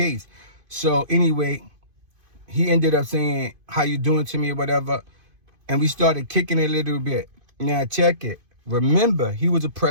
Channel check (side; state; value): left; late; 2.5 ms